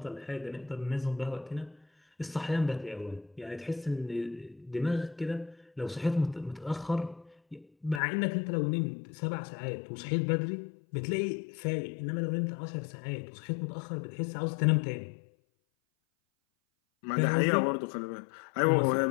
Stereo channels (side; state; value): right; drops out; at 8.0 s